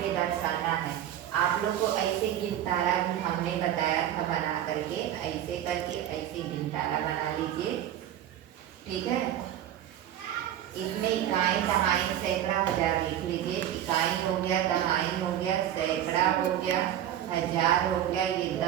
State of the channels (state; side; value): quieter; left; 11.3 dB